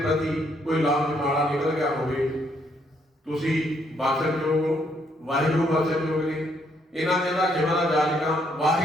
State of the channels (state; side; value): normal; both; correlation 0.71